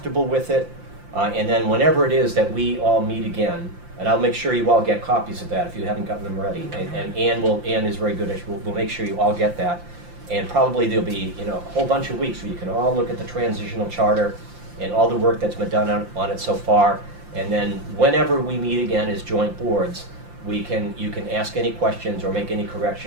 with it, and then whenever it is that we all meet again, and I'll make sure you all get copies of that if you haven't gotten them ready. And Ann is very good at, we'll make sure you all get that. And probably there'll be a whole bunch of weeks where you can all look at the transitional charter and all the work that's been done on it so far. And then whenever we meet again as joint boards, you can ask any questions or make any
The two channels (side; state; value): left; late; 5.8 ms